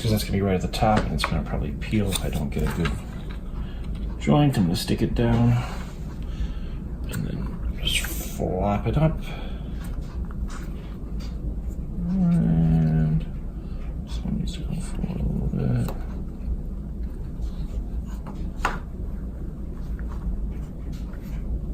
that's going to be right at the top and it's going to probably peel if I don't get a good joint. I'm going to stick it down and then just flop it up. And this one needs to go forward a little bit.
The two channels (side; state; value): both; identical; correlation 1.00